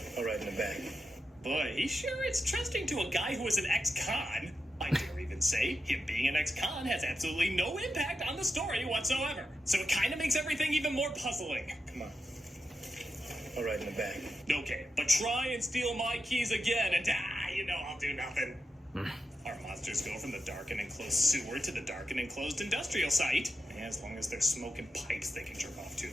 All right, in the back. Boy, he sure is trusting to a guy who was an ex-con. I dare even say him being an ex-con has absolutely no impact on the story whatsoever. So it kind of makes everything even more puzzling. Come on. All right, in the back. Okay, but try and steal my keys again, and I'll do nothing. Our monsters go from the dark and enclosed sewer to the dark and enclosed industrial site. And as long as they're smoking pipes they can jerk off to,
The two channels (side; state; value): both; normal; correlation 0.88